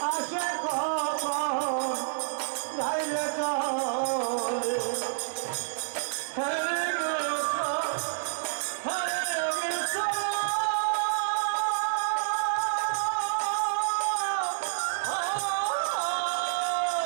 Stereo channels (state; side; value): silent; left; 59 dB below the other